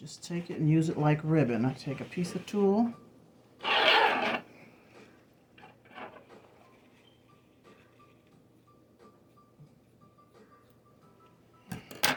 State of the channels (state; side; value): identical; both; correlation 1.00